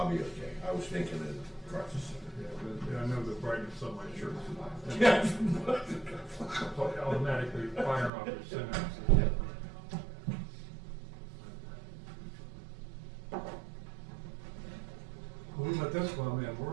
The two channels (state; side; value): drops out; left; at 8.1 s